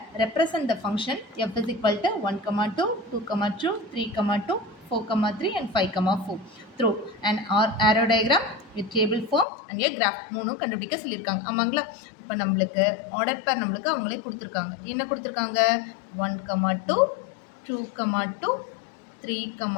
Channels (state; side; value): drops out; right; at 9.5 s